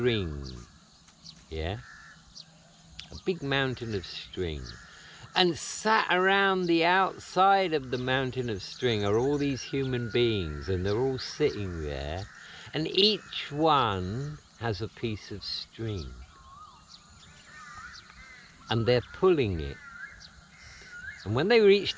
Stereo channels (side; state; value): both; identical; correlation 1.00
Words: yeah? A big mountain of string. And sat around the outside of the mountain of string are all these human beings, and they're all sitting there, and each one has a piece of string. And they're pulling it. And when they reach